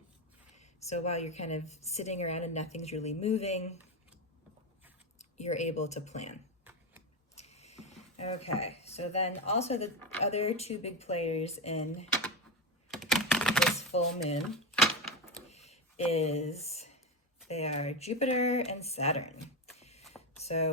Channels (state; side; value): normal; both; correlation 0.14